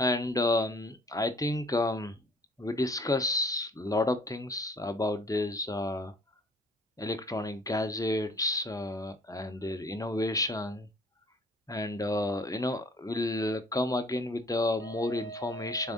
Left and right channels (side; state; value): both; normal; correlation 0.54